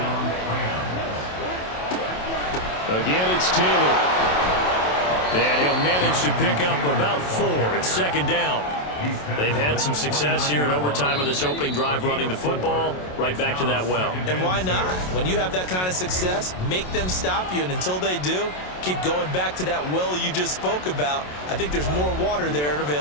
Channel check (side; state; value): right; late; 27 ms